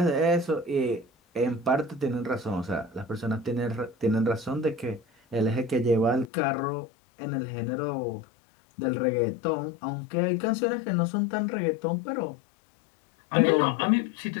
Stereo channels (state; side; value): drops out; right; at 6.3 s